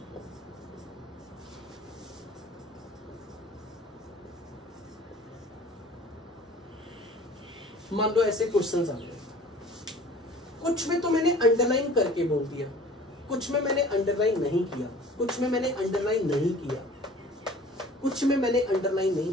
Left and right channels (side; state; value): both; normal; correlation 0.47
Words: मान लो ऐसे क्वेश्चंस आ गए, कुछ में तो मैंने अंडरलाइन करके बोल दिया, कुछ में मैंने अंडरलाइन नहीं किया, कुछ में मैंने अंडरलाइन नहीं किया, कुछ में मैंने अंडरलाइन